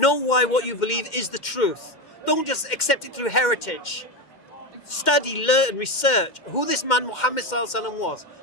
why what you believe is the truth. Don't just accept it through heritage. Study, learn, research who this man Muhammad Sallallahu Alaihi Wasallam was.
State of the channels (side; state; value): right; late; 2.1 ms